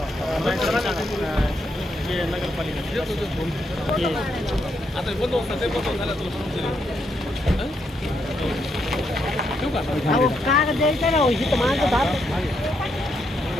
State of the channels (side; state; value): both; normal; correlation 0.78